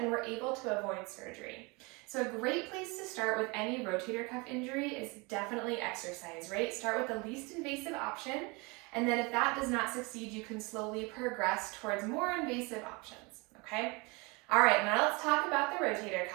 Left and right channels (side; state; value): left; quieter; 27.6 dB